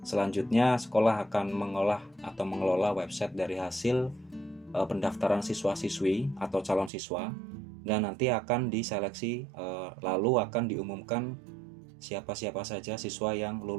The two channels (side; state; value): left; drops out; at 6.9 s